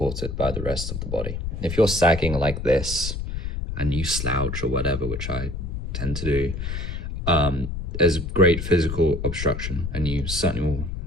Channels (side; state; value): left; noise; rumble, 5 dB below the sound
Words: by the rest of the body. If you're sagging like this and you slouch or whatever, which I tend to do, there's great physical obstruction, and you certainly will